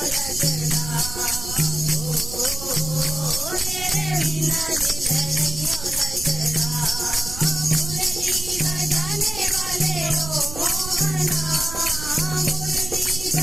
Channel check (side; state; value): right; noise; rumble, 11 dB below the sound